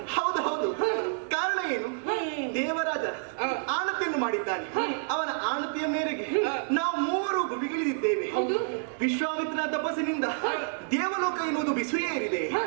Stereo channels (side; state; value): left; silent; digital silence